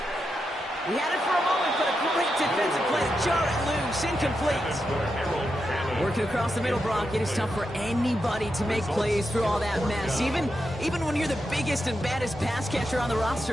He had it for a moment, but a great defensive play to jar it loose. Incomplete. Working across the middle, Brock, it is tough for anybody to make plays through all that mess, even when you're the biggest and baddest pass catcher on the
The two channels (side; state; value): both; normal; correlation 0.86